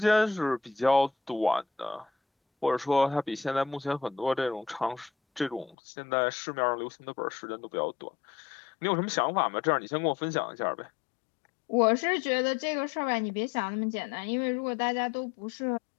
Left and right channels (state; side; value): drops out; right; at 5.8 s